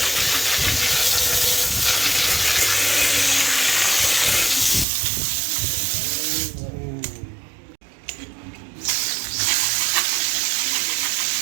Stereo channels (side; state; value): left; drops out; at 4.9 s